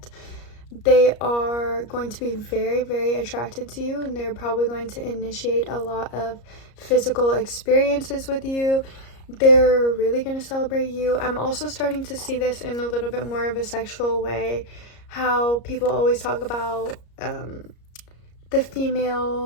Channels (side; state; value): right; late; 34 ms